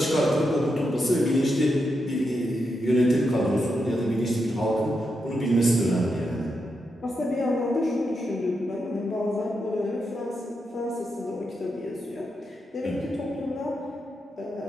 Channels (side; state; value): both; normal; correlation 0.85